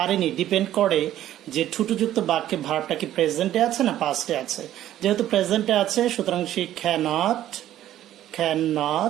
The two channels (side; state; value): left; quieter; 12.6 dB